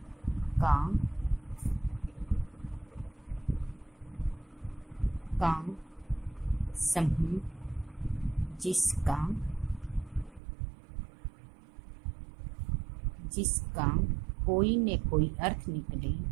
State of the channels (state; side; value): drops out; left; at 10.4 s